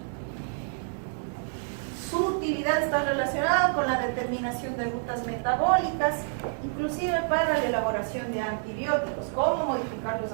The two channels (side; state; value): left; silent; digital silence